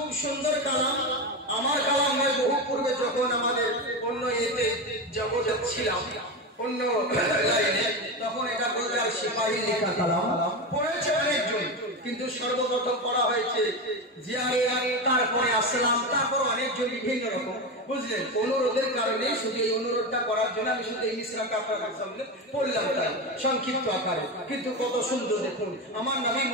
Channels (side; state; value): both; normal; correlation 0.18